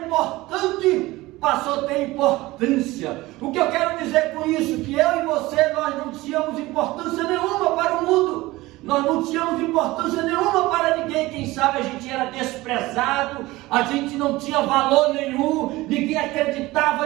importante passou a ter importância. O que eu quero dizer com isso? Que eu e você, nós não tínhamos importância nenhuma para o mundo. Nós não tínhamos importância nenhuma para ninguém. Quem sabe a gente era desprezado, a gente não tinha valor nenhum, ninguém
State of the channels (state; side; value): quieter; left; 19.3 dB